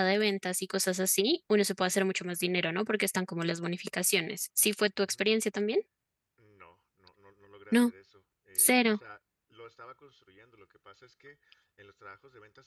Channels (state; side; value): identical; both; correlation 1.00